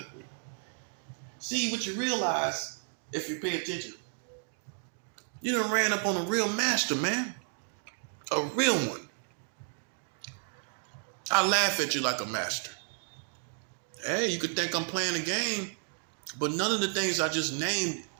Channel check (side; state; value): left; silent; 56 dB below the other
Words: See, what you realize, if you pay attention, you done ran up on a real master, man. A real one. I laugh at you like a master. Hey, you could think I'm playing a game, but none of the things I just named